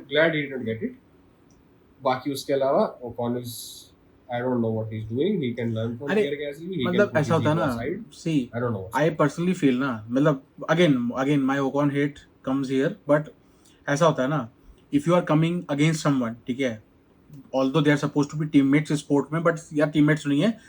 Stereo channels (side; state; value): both; identical; correlation 1.00